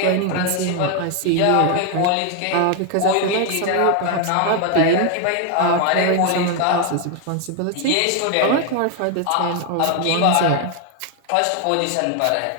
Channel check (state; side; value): different; both; correlation 0.01